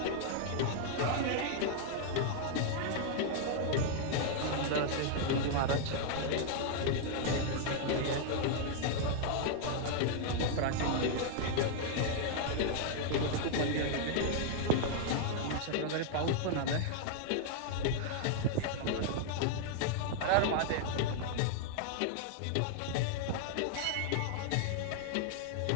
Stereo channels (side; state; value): both; different; correlation 0.00